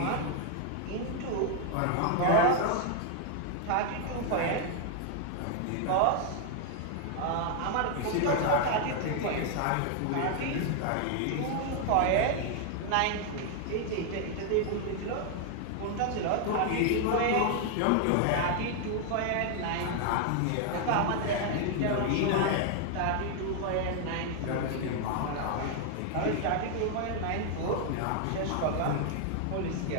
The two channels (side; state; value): both; different; correlation 0.00